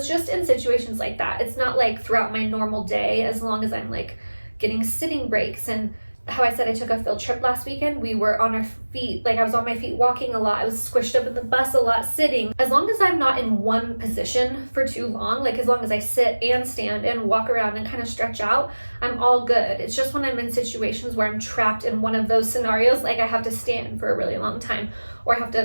just in situations like that. It's not like throughout my normal day, as long as I'm like getting sitting breaks. And how I said I took a field trip last weekend, we were on our feet, like I was on my feet walking a lot, I was squished up in the bus a lot sitting. As long as I'm not in one position for too long, like as long as I sit and stand and walk around and kind of stretch out, I'm all good. It's just when I'm in situations where I'm trapped in one of those scenarios, like I have to stand for a really long time or I have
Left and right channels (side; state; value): both; inverted; correlation -1.00